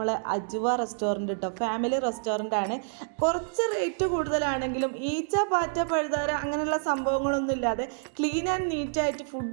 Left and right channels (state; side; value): silent; left; digital silence